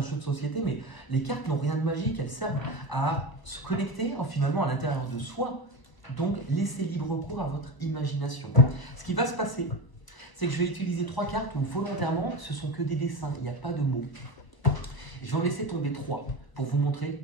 jeu de société, mais les cartes n'ont rien de magique, elles servent à se connecter finalement à l'intérieur de soi, donc laissez libre cours à votre imagination. Ce qui va se passer, c'est que je vais utiliser 3 cartes où volontairement, ce sont que des dessins, il n'y a pas de mots. Je vais en laisser tomber 3 pour vous montrer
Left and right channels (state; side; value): late; right; 1.0 ms